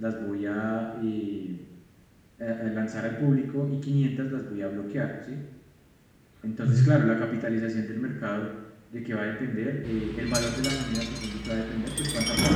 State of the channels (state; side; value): identical; both; correlation 1.00